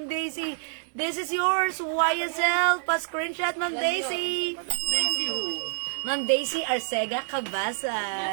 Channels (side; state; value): left; silent; digital silence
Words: Daisy. This is yours, YSL. Pa-screenshot, Ma'am Daisy. Daisy who? Ma'am Daisy Arcega